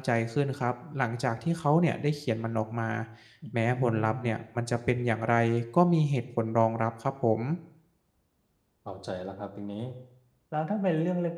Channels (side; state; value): both; identical; correlation 1.00